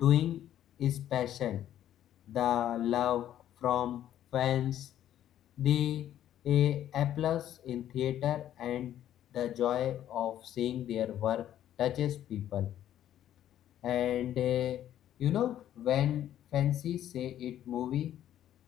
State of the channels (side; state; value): right; quieter; 11.5 dB